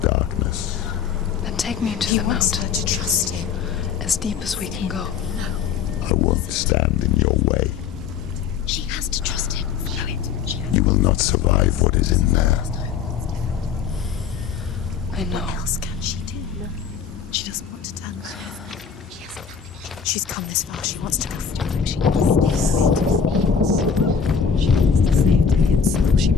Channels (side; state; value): right; quieter; 6.9 dB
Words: darkness. Then take me to the mountain. To trust you. As deep as we can go. No, I won't stand in your way. she has to trust him. You will not survive what is in there. I know. What else can she do? No, she doesn't want to tell us. She hasn't. She's come this far. She wants to go forward. She wants this. She wants to save Dillian's soul. She